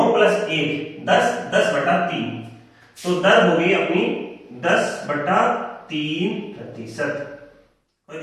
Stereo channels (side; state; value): both; identical; correlation 1.00